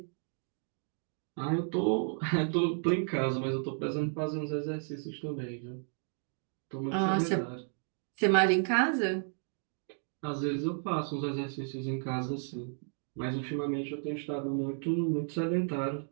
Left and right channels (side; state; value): left; silent; 56 dB below the other